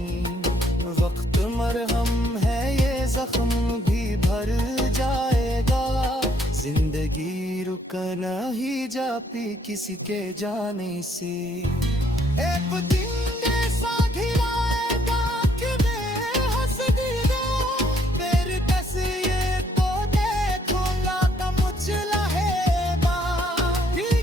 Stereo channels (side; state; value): both; normal; correlation 0.68